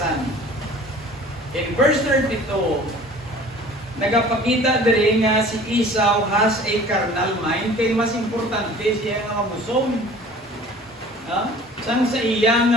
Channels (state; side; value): normal; both; correlation 0.47